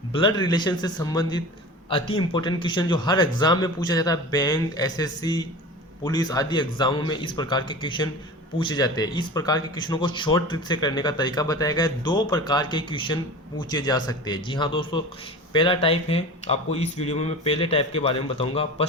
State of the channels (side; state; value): both; normal; correlation 0.34